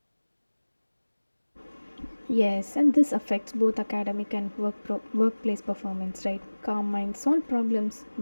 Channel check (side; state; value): both; inverted; correlation -1.00